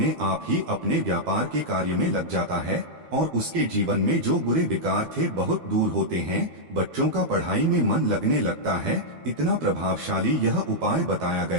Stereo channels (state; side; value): late; left; 12 ms